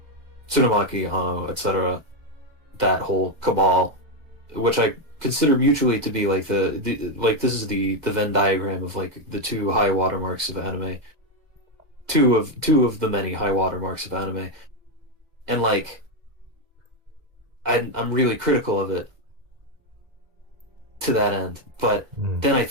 Tsurumaki, etc. That whole cabal, which I consider mutually to be like the like this is the Venn diagram of like the two high watermarks of anime, two of the many high watermarks of anime, and like I'm really critical of it to that end. But Mm. then I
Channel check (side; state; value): left; late; 1.9 ms